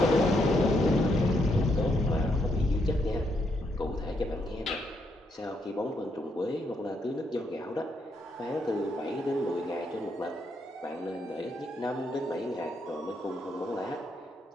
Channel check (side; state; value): both; normal; correlation 0.77